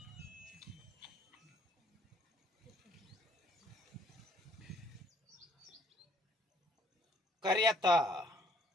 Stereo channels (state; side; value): normal; both; correlation 0.63